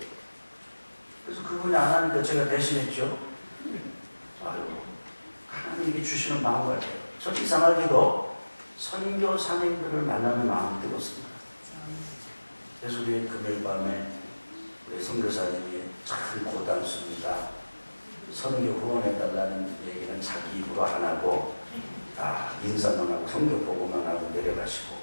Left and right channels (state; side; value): inverted; both; correlation -1.00